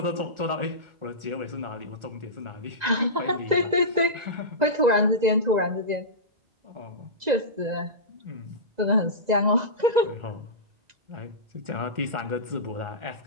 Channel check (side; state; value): left; late; 2.0 ms